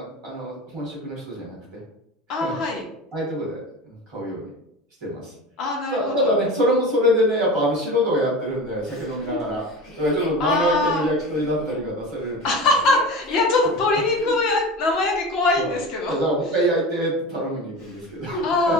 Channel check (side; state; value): both; normal; correlation 0.31